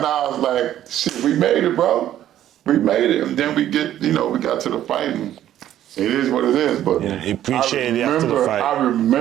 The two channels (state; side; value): quieter; left; 12.0 dB